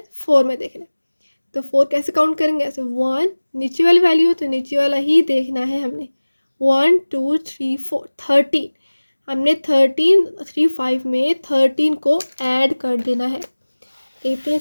4 में देखना। तो 4 कैसे काउंट करेंगे, ऐसे 1 नीचे वाली वैल्यू हो तो नीचे वाला ही देखना है हमने। 1 2 3 4 13, हमने 13 3 5 में 13 को ऐड कर देना है। देखते हैं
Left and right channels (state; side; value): inverted; both; correlation -1.00